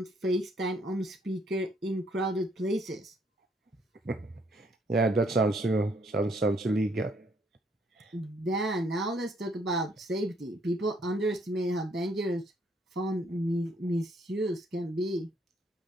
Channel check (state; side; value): normal; both; correlation 0.68